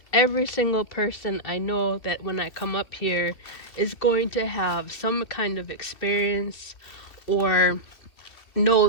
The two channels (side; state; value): right; late; 2.8 ms